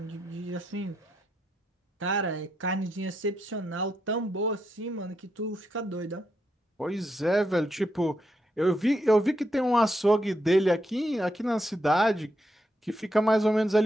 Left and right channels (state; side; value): normal; both; correlation 0.81